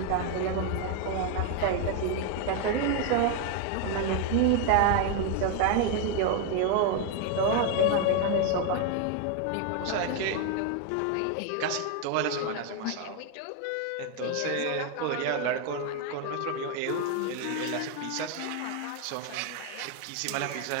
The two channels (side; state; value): both; different; correlation 0.01